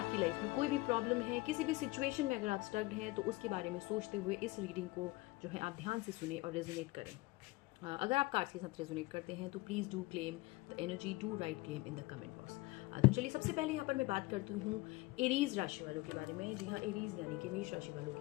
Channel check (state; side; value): quieter; right; 21.6 dB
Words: लाइफ में कोई भी प्रॉब्लम है, किसी भी सिचुएशन में अगर आप स्टक्ड हैं, तो उसके बारे में सोचते हुए इस रीडिंग को जो है आप ध्यान से सुने और रेजोनेट करें। अगर आप कार्ड्स के साथ रेजोनेट करते हैं तो please do claim the energy, do right claim in the comment box. तो चलिए सबसे पहले यहाँ पर मैं बात करती हूँ एरीज राशि वालों के बारे में। जी हाँ, एरीज यानी कि मेष राशि वालों